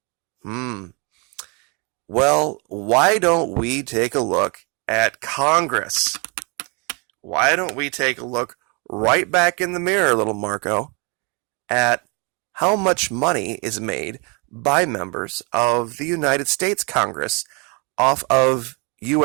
Well, why don't we take a look at Congress? Why don't we take a look right back in the mirror, little Marco, at how much money is made by members of the United States Congress off of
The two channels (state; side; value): quieter; left; 32.5 dB